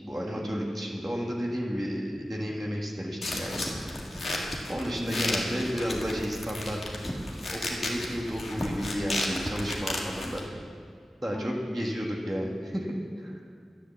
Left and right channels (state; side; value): normal; both; correlation 0.93